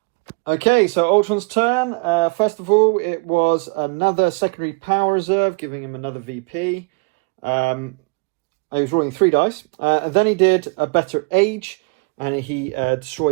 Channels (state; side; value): quieter; left; 32.4 dB